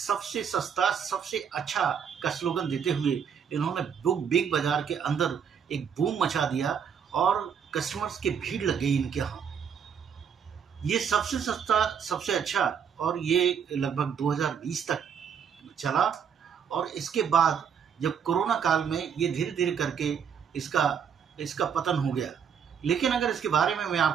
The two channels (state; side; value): quieter; left; 7.4 dB